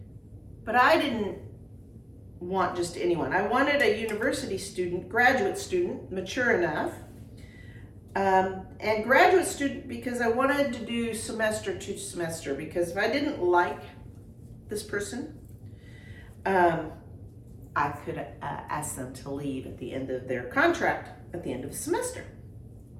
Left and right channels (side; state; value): both; identical; correlation 1.00